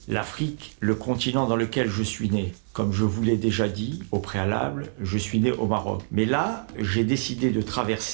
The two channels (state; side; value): silent; left; digital silence